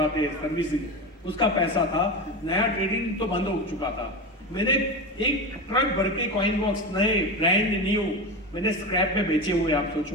हैं, सर्विसिंग, उसका पैसा था। नया ट्रेडिंग तो बंद हो चुका था। मैंने एक ट्रक भर के कॉइन बॉक्स नए ब्रांड न्यू मैंने स्क्रैप में बेचे हुए। आप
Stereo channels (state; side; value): normal; both; correlation 0.22